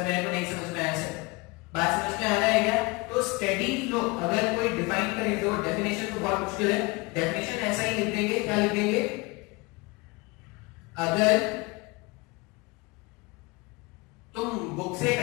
मेरे को नहीं समझ में आया सर, बात समझ में आ रहा है क्या? तो स्टेडी फ्लो अगर कोई डिफाइन करे, तो डेफिनेशन तो बहुत मुश्किल है, डेफिनेशन ऐसा ही लिख देंगे, क्या लिख देंगे, अगर तुम बुक से एक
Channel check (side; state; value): right; quieter; 25.6 dB